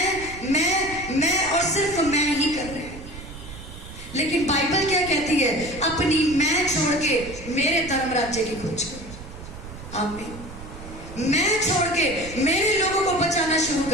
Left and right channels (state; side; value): noise; right; rumble, 14 dB below the sound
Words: मैं और सिर्फ मैं ही कर रहे हैं। लेकिन बाइबल क्या कहती है? अपनी मैं छोड़ के मेरे धर्म राज्य की खोज करो। आमीन। मैं छोड़ के मेरे लोगों को बचाना शुरू